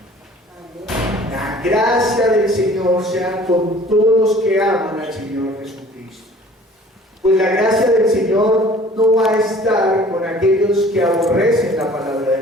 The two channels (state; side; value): normal; both; correlation 0.50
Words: La gracia del Señor sea con todos los que aman al Señor Jesucristo. Pues la gracia del Señor no va a estar con aquellos que aborrecen la palabra